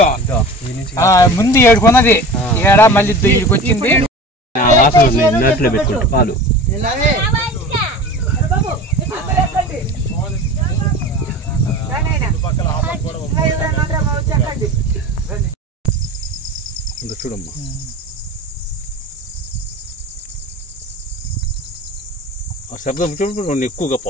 ముందు ఏడుకున్నది ఏడా మళ్ళీ ఇక్కడికి వచ్చింది పాలు చూడమ్మా ఆ శబ్దం చూడండి ఎక్కువగా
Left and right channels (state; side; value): normal; both; correlation 0.36